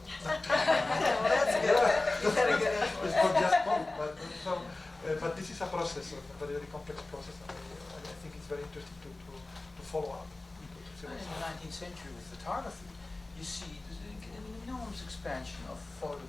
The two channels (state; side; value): quieter; right; 3.0 dB